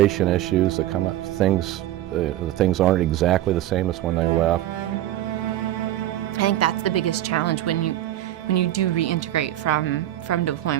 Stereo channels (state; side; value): quieter; left; 13.6 dB